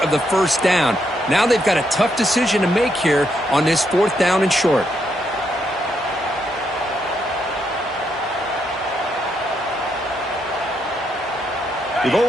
of the first down. Now they've got a tough decision to make here on this 4th down and short. They've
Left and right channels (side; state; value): both; normal; correlation 0.78